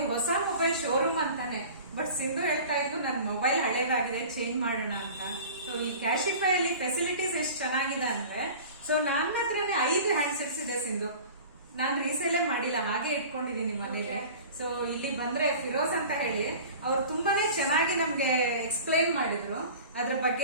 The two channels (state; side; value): inverted; both; correlation -0.40